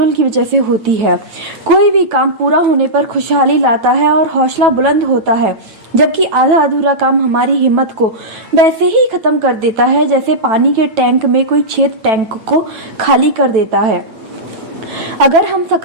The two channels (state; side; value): late; left; 9.1 ms